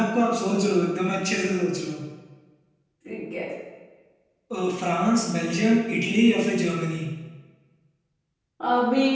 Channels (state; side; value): identical; both; correlation 1.00